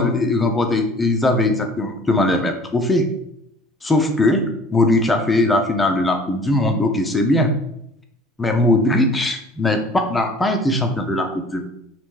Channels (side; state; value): both; normal; correlation 0.50